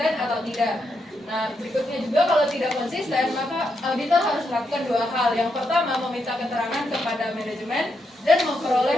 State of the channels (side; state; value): both; normal; correlation 0.82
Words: atau tidak. Nah, berikutnya juga kalau tidak konsisten, maka auditor harus melakukan 2 hal. Yang pertama, meminta keterangan kepada manajemen dan